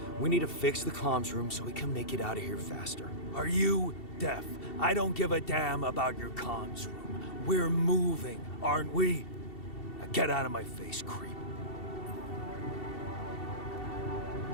We need to fix the comms room so we can make it out of here faster. Are you deaf? I don't give a damn about your comms room. We're moving, aren't we? Now get out of my face, creep.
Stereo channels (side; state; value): right; late; 2.7 ms